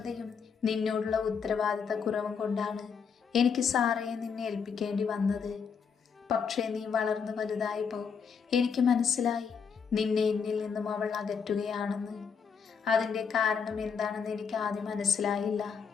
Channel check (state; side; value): quieter; right; 6.2 dB